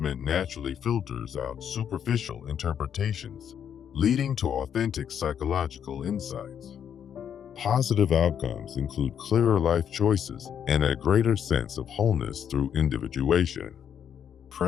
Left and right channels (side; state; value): right; quieter; 8.6 dB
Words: naturally filters out superficial interpretations, leading to authentic psychological insights. Positive outcomes include clearer life choices and a greater sense of wholeness through individuation.